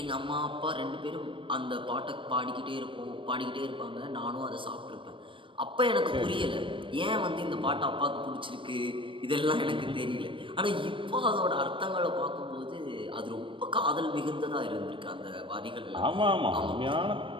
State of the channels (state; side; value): late; left; 0.25 ms